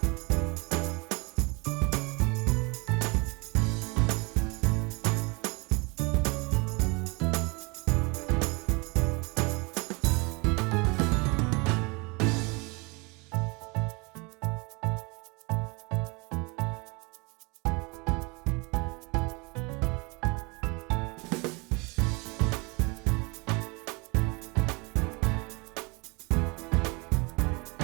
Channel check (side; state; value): left; quieter; 28.5 dB